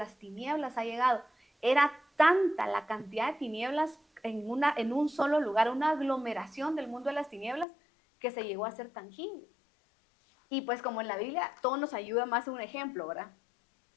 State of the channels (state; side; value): drops out; right; at 7.7 s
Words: tinieblas ha llegado. Era tanta la cantidad de tinieblas en un solo lugar, una aglomeración del mundo de las tinieblas que se llegó a ser tangible. Y pues como en la Biblia todo nos ayuda más un ejemplo, ¿verdad?